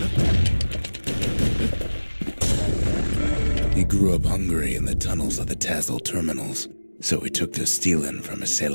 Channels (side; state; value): both; inverted; correlation -1.00